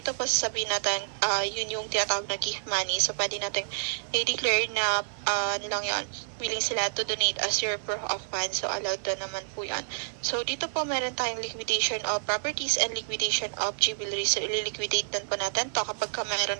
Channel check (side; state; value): left; silent; digital silence